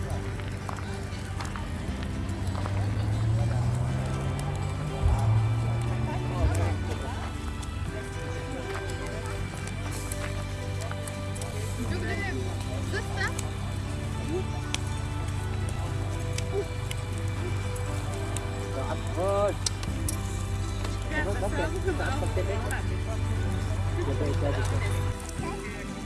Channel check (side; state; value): both; identical; correlation 1.00